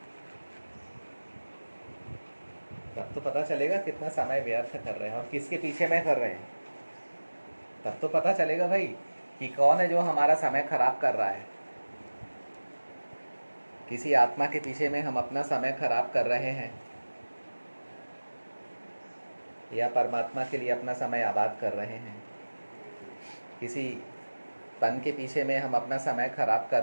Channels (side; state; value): both; inverted; correlation -1.00